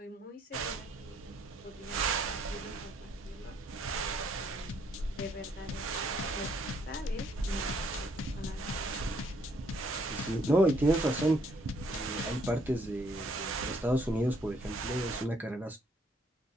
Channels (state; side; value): normal; both; correlation 0.67